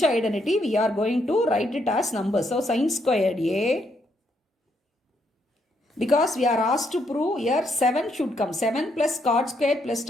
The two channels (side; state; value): both; normal; correlation 0.75